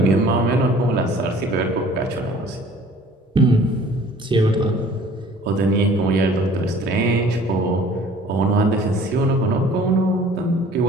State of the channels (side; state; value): both; normal; correlation 0.50